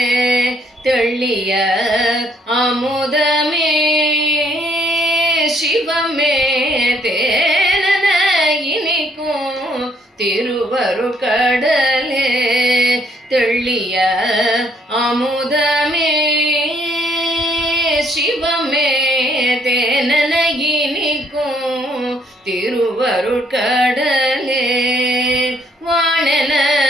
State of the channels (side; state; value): both; normal; correlation 0.68